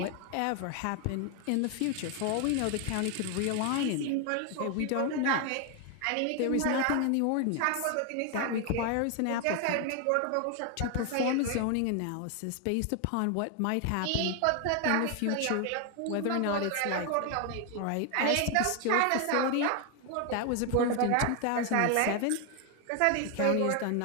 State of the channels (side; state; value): both; different; correlation 0.01